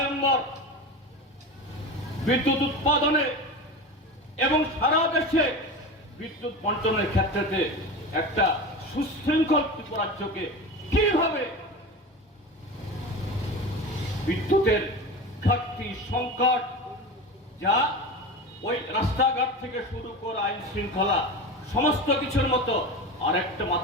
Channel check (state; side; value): normal; both; correlation 0.28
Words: বিদ্যুৎ উৎপাদনে এবং সারা দেশে বিদ্যুৎ বন্টনের ক্ষেত্রে একটা সুশৃঙ্খল ত্রিপুরাজ্যকে কিভাবে বিদ্যুতের ঘাটতি, সংকট, যা ওই রাস্তাঘাট থেকে শুরু করে আইন শৃঙ্খলা সমস্ত কিছুর মতো আরেকটা